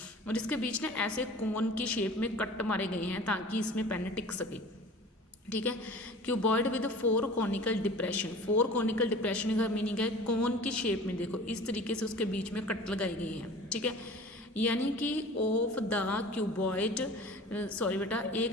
और इसके बीच में ऐसे कोन की शेप में कट मारे गए हैं ताकि इसमें पेन टिक सके। ठीक है, cuboid with 4 conical depression. 4 conical depression का मीनिंग है कोन की शेप में, देखो इस तरीके से उसके बीच में कट लगाई गई है। ठीक है, यानी कि ऑफ द क्यूबॉइड, सॉरी बेटा,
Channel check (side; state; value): both; normal; correlation 0.41